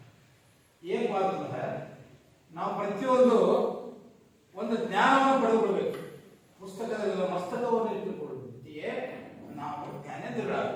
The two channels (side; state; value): both; identical; correlation 1.00